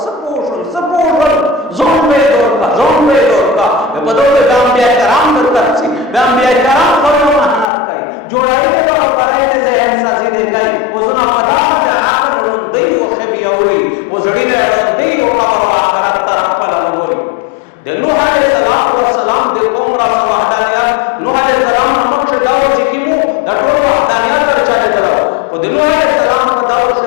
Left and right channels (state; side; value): drops out; right; at 7.7 s